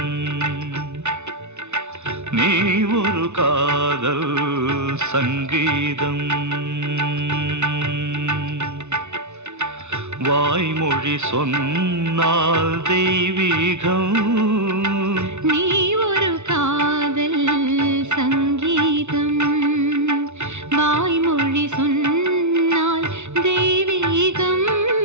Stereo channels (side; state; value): left; late; 0.82 ms